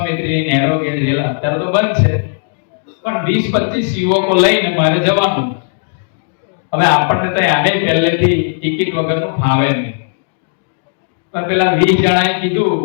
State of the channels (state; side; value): silent; right; digital silence